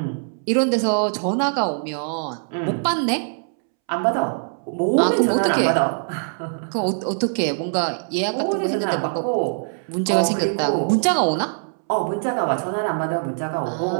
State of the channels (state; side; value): silent; left; 64 dB below the other